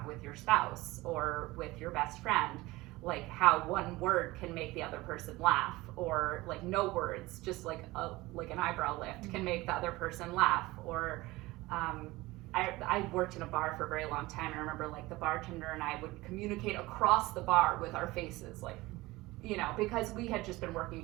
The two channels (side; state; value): left; quieter; 20.1 dB